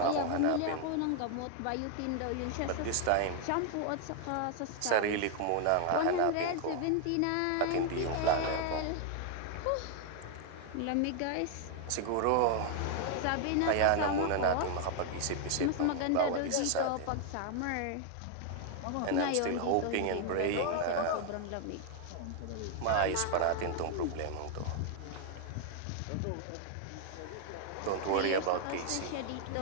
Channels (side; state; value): both; different; correlation 0.00